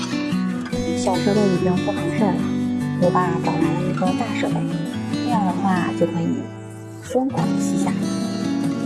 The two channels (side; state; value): both; identical; correlation 1.00